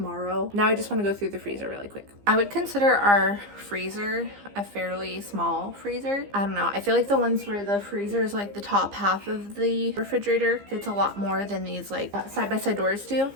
Now I just want to go through the freezer really quick. I would consider our freezer a fairly small freezer. I don't know, I feel like the ones where the freezer is like the top half of the refrigerator fits a lot more than these like side-by-side doors do,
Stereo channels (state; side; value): late; left; 15 ms